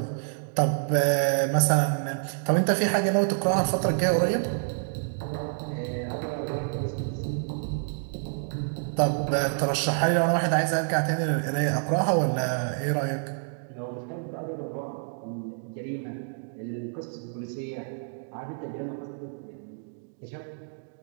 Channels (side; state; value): left; silent; digital silence